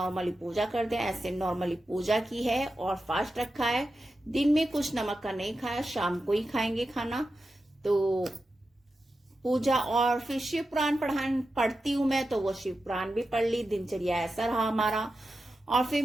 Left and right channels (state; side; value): normal; both; correlation 0.91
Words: पूजा करते हैं ऐसे नॉर्मली पूजा की है और फास्ट रखा है। दिन में कुछ नमक का नहीं खाया, शाम को ही खाएंगे खाना। तो पूजा और फिर शिव पुराण पढ़ती हूँ मैं, तो वो शिव पुराण भी पढ़ ली। दिनचर्या ऐसा रहा हमारा। और फिर